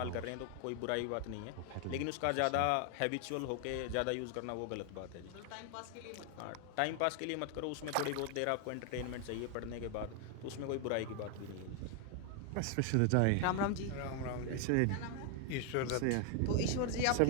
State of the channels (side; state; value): both; different; correlation 0.00